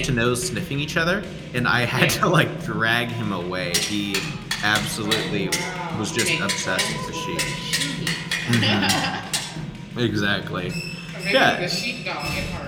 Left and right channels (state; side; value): identical; both; correlation 1.00